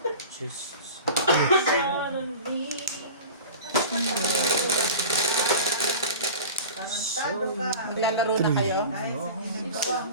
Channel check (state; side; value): inverted; both; correlation -0.35